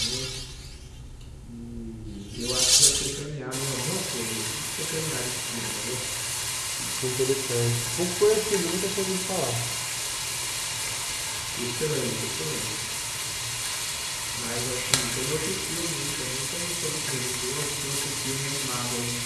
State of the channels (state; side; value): identical; both; correlation 1.00